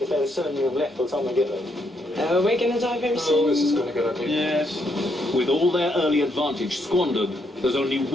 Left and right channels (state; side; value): normal; both; correlation 0.75